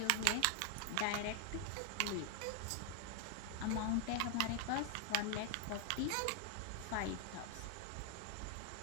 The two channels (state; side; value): different; both; correlation 0.00